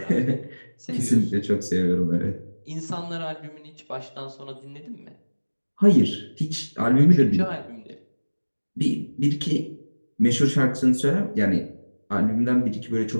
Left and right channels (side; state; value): both; inverted; correlation -1.00